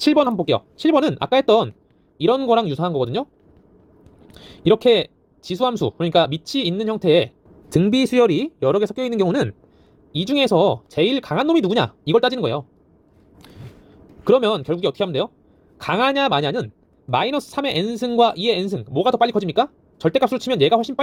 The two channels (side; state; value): both; identical; correlation 1.00